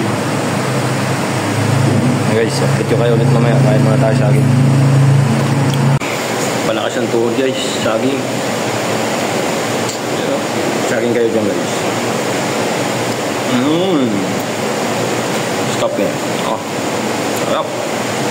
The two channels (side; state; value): both; identical; correlation 1.00